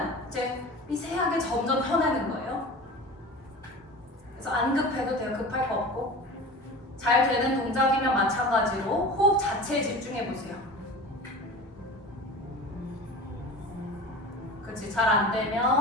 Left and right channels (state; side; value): normal; both; correlation 0.35